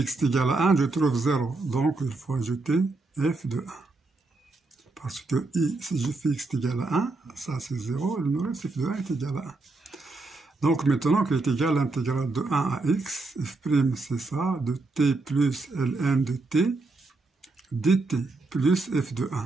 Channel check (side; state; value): left; quieter; 3.4 dB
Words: égal à 1, je trouve 0. Donc il faut ajouter f de 1. Parce que si je fais x égal à 1, ça c'est 0, il me reste f de 1 est égal à 1. Donc maintenant qu'il est égal à l'intégrale de 1 à x, f' c'est ça, de t plus ln de t, dt plus f de